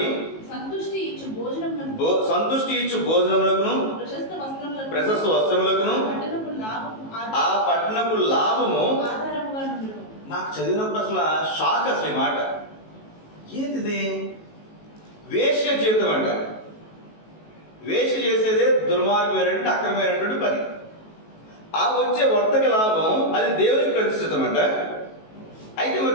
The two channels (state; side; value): late; right; 18 ms